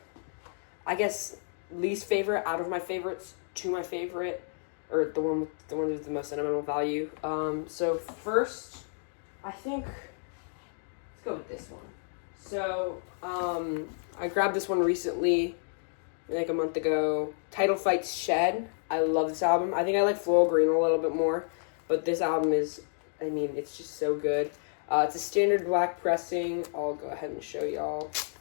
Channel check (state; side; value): silent; right; digital silence